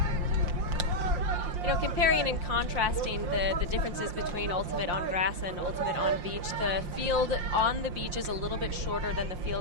You know, comparing and contrasting the differences between ultimate on grass and ultimate on beach, the field on the beach is a little bit shorter than the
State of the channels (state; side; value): late; left; 5.7 ms